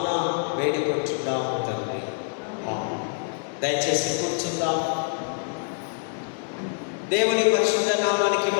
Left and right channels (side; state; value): right; silent; digital silence